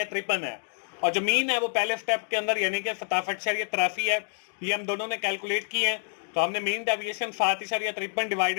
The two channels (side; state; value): right; silent; digital silence